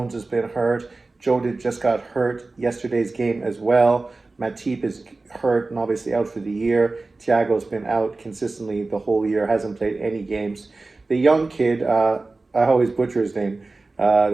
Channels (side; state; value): left; quieter; 3.4 dB